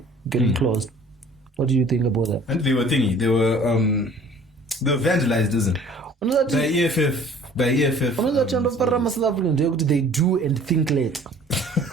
getting closed. What do you think about that? And they were they were vandalized, isn't it? The EFF. They do and think late.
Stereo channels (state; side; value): normal; both; correlation 0.51